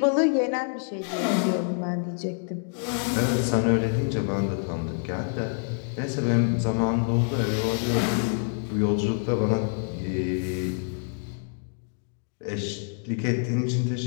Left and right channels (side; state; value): right; silent; 60 dB below the other